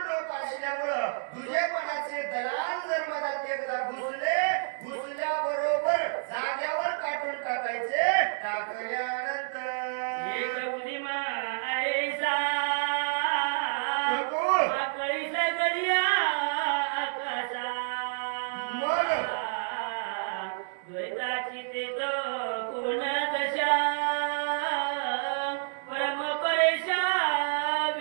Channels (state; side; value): silent; left; digital silence